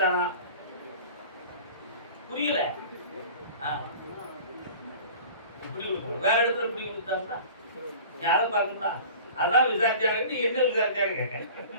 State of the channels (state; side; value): inverted; both; correlation -0.41